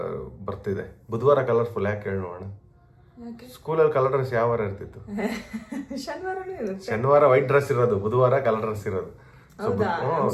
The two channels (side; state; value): both; identical; correlation 1.00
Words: ಬರ್ತಿದೆ. ಬುಧವಾರ ಕಲರ್ಫುಲ್ ಯಾಕೆ ಹೇಳಿ ನೋಡೋಣ. ಸ್ಕೂಲಲ್ಲಿ ಕಲರ್ ಡ್ರೆಸ್ ಯಾವ ವಾರ ಇರ್ತಿತ್ತು? ಶನಿವಾರ ವೈಟ್ ಡ್ರೆಸ್ ಇರೋದು, ಬುಧವಾರ ಕಲರ್ ಡ್ರೆಸ್ ಇರೋದು.